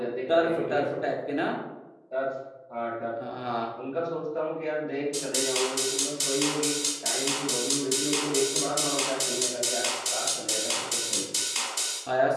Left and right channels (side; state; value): both; identical; correlation 1.00